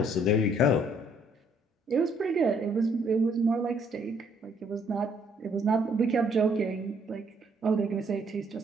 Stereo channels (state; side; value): normal; both; correlation 0.66